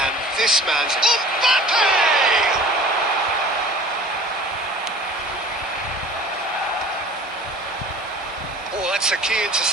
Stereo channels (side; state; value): both; normal; correlation 0.45